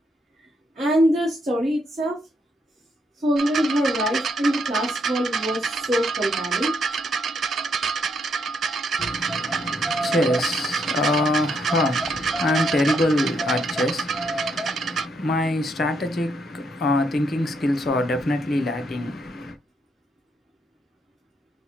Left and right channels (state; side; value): normal; both; correlation 0.76